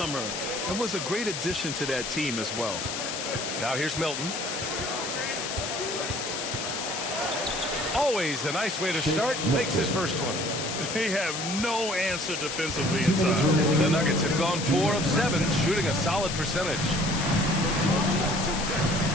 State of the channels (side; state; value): left; noise; hiss, 4 dB below the sound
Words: and was a great addition to that team as well. Now here's Milton. Always a nice way to start. Makes his first one. They have no answer defensively inside. The Nuggets have gone 4 of 7, shooting a solid percentage.